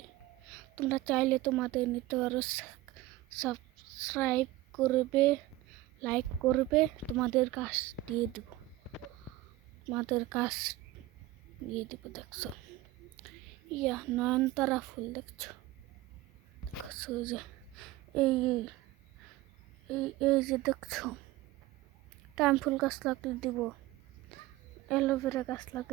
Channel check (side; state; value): left; quieter; 17.0 dB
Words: তোমরা চাইলে তোমাদের নিতে পারো, সাবস্ক্রাইব করবে, লাইক করবে, তোমাদের কাজ দিয়ে দেব, তোমাদের কাজ দিয়ে দেবো। দেখছো নয়নতারা ফুল, দেখছো দেখছো যে এই এই এই যে দেখছো টাইম ফুল গাছ লাগলে দিব, অ্যালোভেরা গাছ